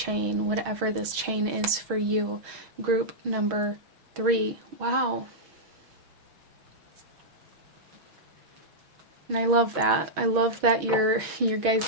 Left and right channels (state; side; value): late; left; 6.3 ms